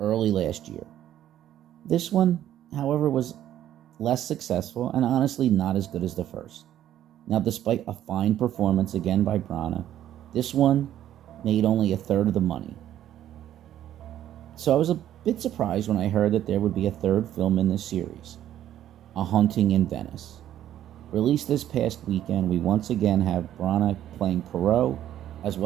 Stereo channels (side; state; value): left; quieter; 11.7 dB